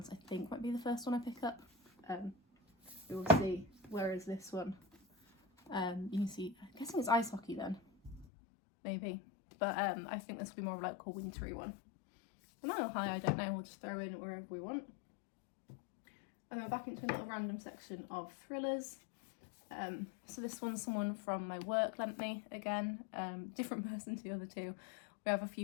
I think might be the first one I pick up. We will see. Whereas this one, you can see, I'm guessing it's ice hockey then, maybe. But I think this will be more of like a wintry one. The Mile High, I don't know, we'll just throw in wherever we want. And then we're back into a little random section of thrillers. So this one's someone from my work lent me again, different person to the other 2. We have a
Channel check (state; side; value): drops out; right; at 8.2 s